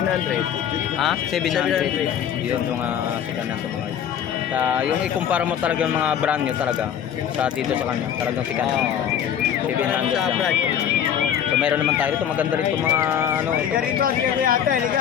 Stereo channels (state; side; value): quieter; right; 9.1 dB